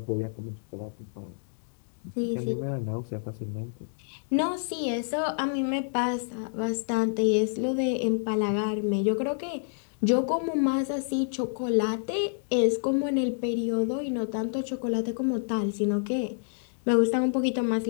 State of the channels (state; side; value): silent; right; digital silence